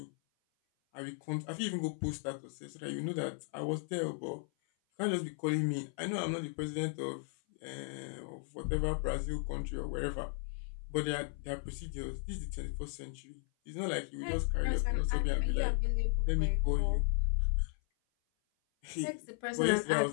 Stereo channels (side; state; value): right; silent; 54 dB below the other